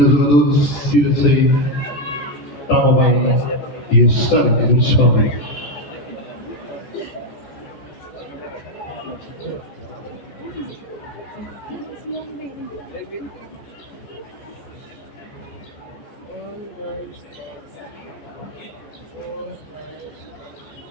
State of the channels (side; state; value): right; late; 14 ms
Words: jogadores se sair tão bem e estar municipal.